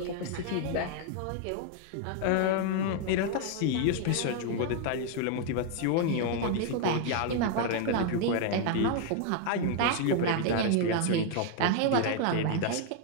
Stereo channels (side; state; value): both; different; correlation 0.00